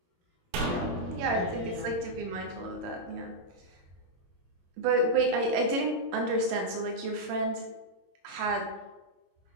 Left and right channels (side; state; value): left; late; 22 ms